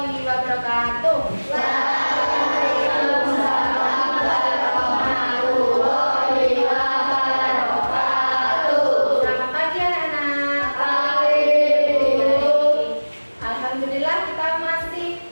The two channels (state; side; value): inverted; both; correlation -1.00